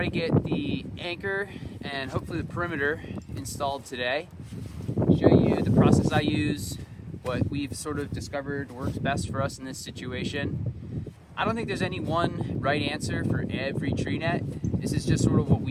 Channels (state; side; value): identical; both; correlation 1.00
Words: to get the anchor and hopefully the perimeter installed today. Show you the process I use, what we've sort of discovered works best for us in this situation. I don't think there's any one right answer for every tree net. This is just sort of what